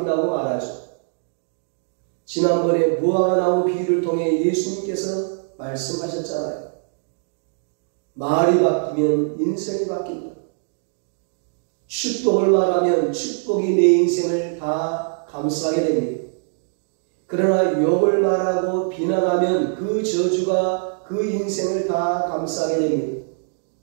말하죠. 지난번에 무화과 나무 비유를 통해 예수님께서 말씀하셨잖아요. 말이 바뀌면 인생이 바뀐다. 축복을 말하면 축복이 내 인생을 다 감싸게 됩니다. 그러나 욕을 말하고 비난하면 그 저주가 그 인생을 다 감싸게 됩니다.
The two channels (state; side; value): silent; left; digital silence